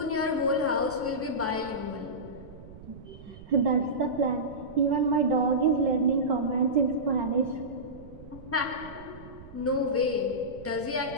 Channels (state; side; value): noise; right; rumble, 17 dB below the sound